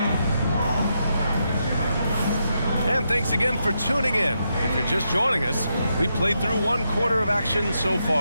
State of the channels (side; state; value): both; inverted; correlation -0.82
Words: And thanks again for tuning in. If you're just joining us, we played through 1 quarter of action so